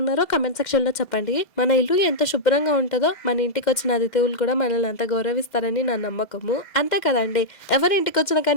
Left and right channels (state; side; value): late; right; 2.1 ms